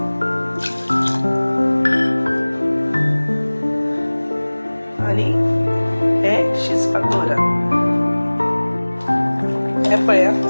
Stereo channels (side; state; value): both; inverted; correlation -1.00